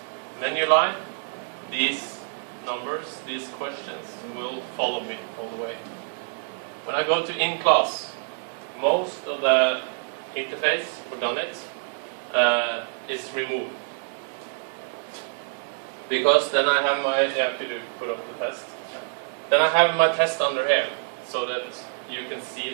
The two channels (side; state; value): left; silent; 61 dB below the other